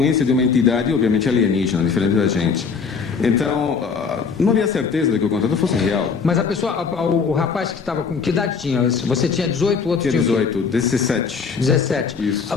de uma entidade, obviamente alienígena, diferente da gente. Então, não havia certeza de que o contato fosse real. Mas a pessoa, o rapaz que estava com... Que idade tinha? Você tinha 18, o outro Tinha tinha o quê? 18, 17. 17.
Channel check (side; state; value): right; quieter; 5.5 dB